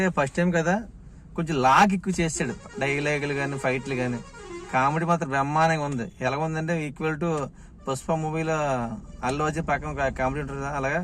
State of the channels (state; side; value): identical; both; correlation 1.00